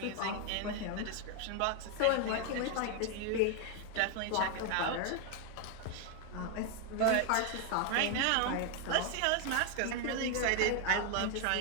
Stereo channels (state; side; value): different; both; correlation 0.01